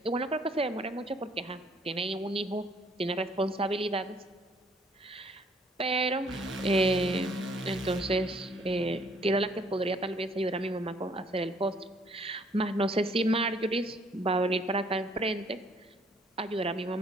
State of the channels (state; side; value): normal; both; correlation 0.62